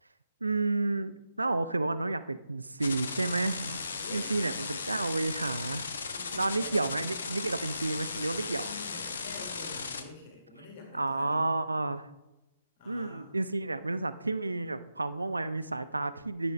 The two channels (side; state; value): both; inverted; correlation -0.88